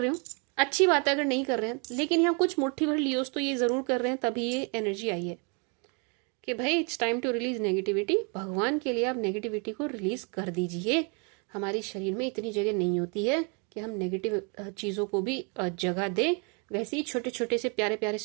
हो, अच्छी बात है अगर नहीं कर रहे हैं, लेकिन यहाँ कुछ मुट्ठी भर लियोज तो ये जरूर कर रहे हैं, तभी ये एनर्जी आई है कि भाई it's time to release negativity. भगवान के लिए आप नेगेटिविटी को रिलीज कर दीजिए। हमारे शरीर में इतनी जगह नहीं होती है कि हम नेगेटिव चीजों को भी जगह दें। वैसे ही छोटे छोटे से प्यारे प्यारे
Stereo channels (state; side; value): quieter; left; 34.9 dB